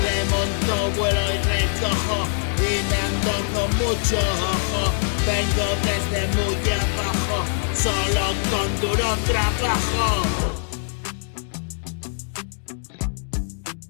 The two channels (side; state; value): right; silent; digital silence